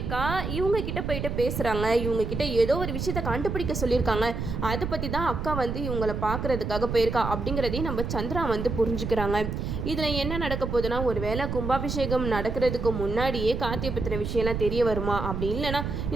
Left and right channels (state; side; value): noise; right; rumble, 4 dB below the sound